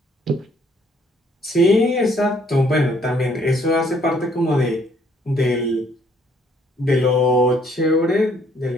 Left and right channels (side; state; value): both; normal; correlation 0.64